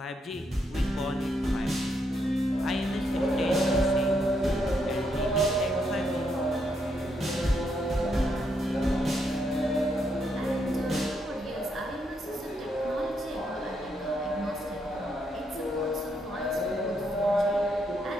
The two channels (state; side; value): normal; both; correlation 0.77